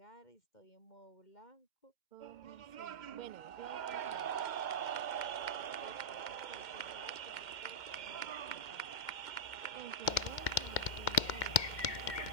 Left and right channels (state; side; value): late; right; 2.1 ms